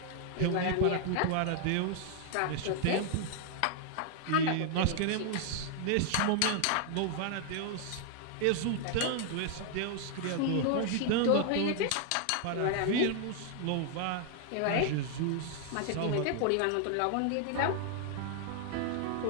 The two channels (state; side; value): different; both; correlation 0.00